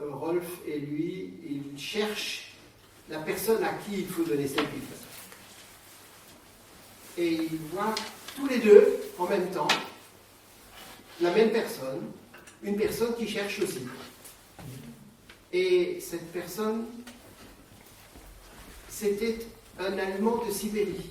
Rolf et lui, ils cherchent la personne à qui il faut donner cette Bible. Et ils voient tous les deux, en même temps, la même personne, une personne qui cherche aussi. Et cette personne, c'était un Allemand de Sibérie,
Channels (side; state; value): both; identical; correlation 1.00